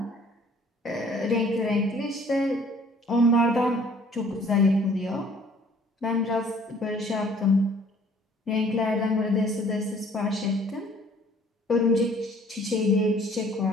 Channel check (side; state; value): both; normal; correlation 0.56